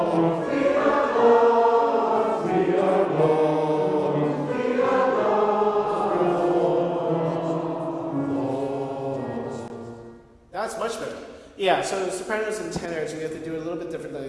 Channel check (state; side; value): identical; both; correlation 1.00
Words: We are lost. We are lost. We are lost. That's much better. Yeah, so sopranos and tenors, we have to do it a little bit